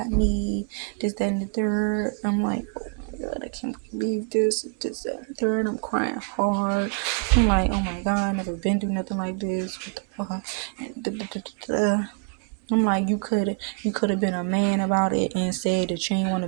me. This, that, and the third. I'm like, oh my God, I can't believe this, that, and the third. I'm crying hard. I'm like, oh my God, I never been through nothing like this. What the fuck? And I'm like, you could have been a man about it and said that you ain't want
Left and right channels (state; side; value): quieter; left; 37.2 dB